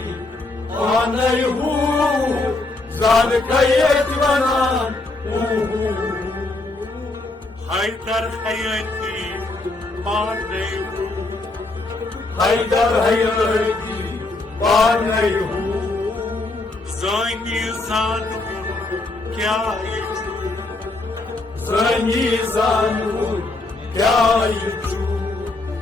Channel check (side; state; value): right; quieter; 3.1 dB